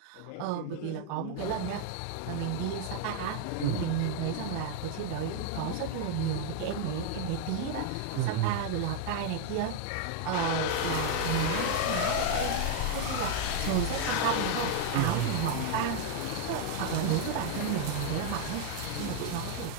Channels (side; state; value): both; different; correlation 0.00